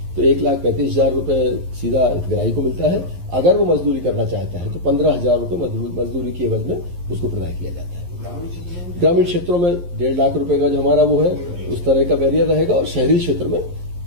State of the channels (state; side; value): late; left; 11 ms